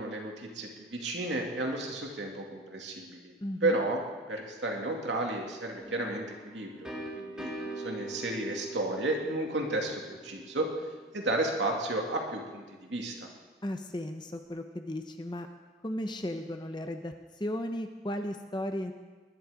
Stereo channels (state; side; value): normal; both; correlation 0.34